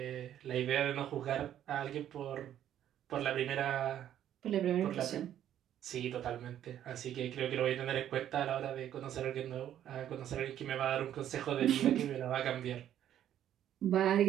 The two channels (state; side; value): quieter; left; 10.9 dB